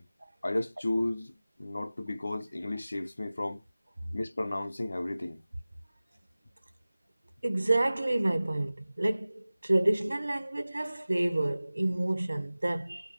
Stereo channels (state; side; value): inverted; both; correlation -0.98